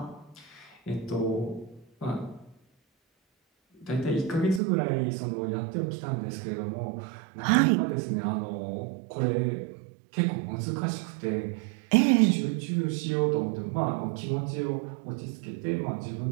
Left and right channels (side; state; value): left; drops out; at 4.6 s